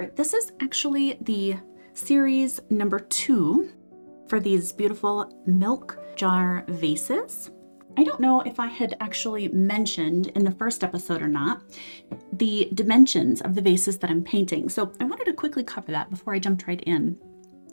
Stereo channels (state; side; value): inverted; both; correlation -1.00